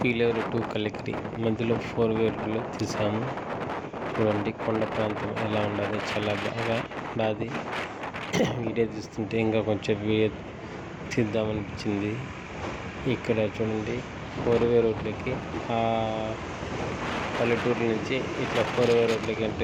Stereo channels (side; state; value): both; identical; correlation 1.00